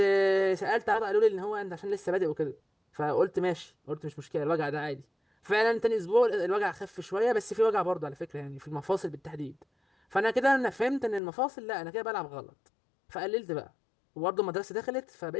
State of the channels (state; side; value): drops out; right; at 11.2 s